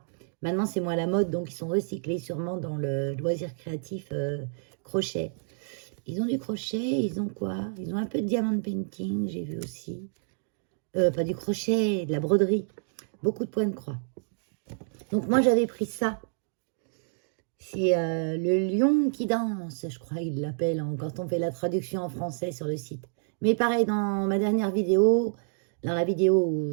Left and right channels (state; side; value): silent; left; digital silence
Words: Maintenant, c'est moins la mode, donc ils sont recyclés sûrement dans le loisir créatif crochet. Ils ont du crochet, ils ont quoi? Ils ont un peu de diamond painting, j'ai vu aussi. Pas du crochet, de la broderie. Beaucoup de points de croix. Donc moi j'avais pris ça. C'est le lion qui danse, je crois qu'ils l'appellent quand on fait la traduction en français sur le site. Mais pareil, dans ma dernière vidéo, dans la vidéo où